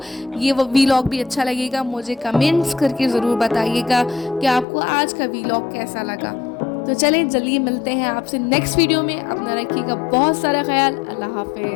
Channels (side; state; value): right; drops out; at 4.7 s